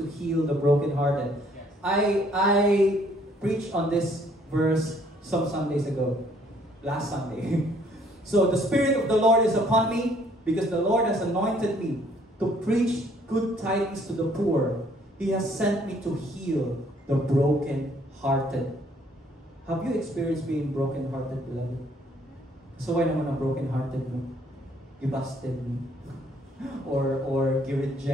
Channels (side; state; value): both; normal; correlation 0.63